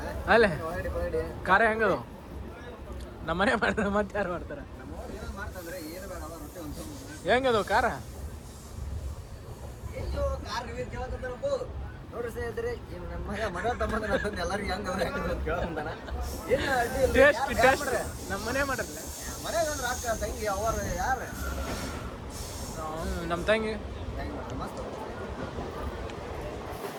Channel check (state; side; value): identical; both; correlation 1.00